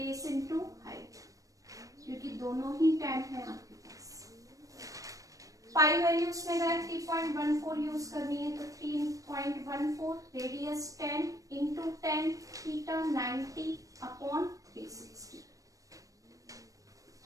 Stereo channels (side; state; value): left; late; 0.16 ms